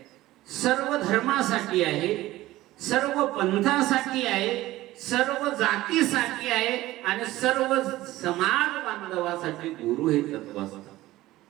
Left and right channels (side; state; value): left; quieter; 16.7 dB